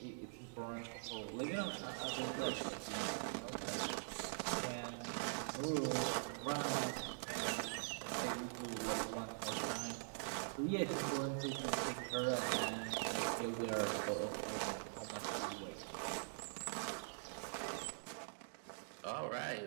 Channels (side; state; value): left; silent; digital silence